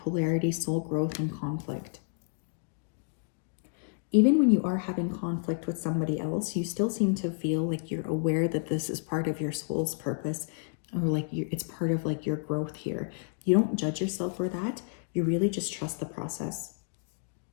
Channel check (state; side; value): silent; right; digital silence